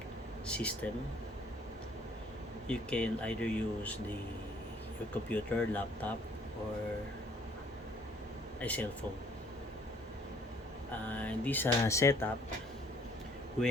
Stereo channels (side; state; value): both; normal; correlation 0.60